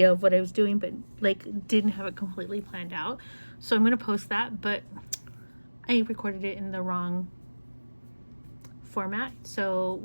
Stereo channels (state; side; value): inverted; both; correlation -1.00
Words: of what I was doing, but like didn't have it completely planned out. So I'm going to post that, but I recorded it in the wrong format. So